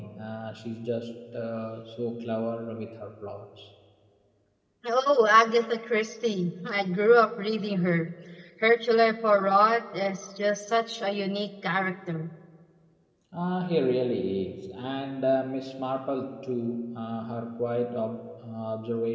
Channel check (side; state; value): both; identical; correlation 1.00